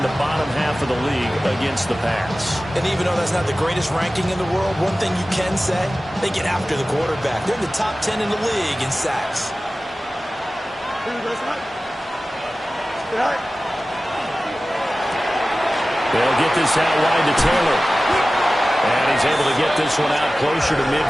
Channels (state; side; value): normal; both; correlation 0.96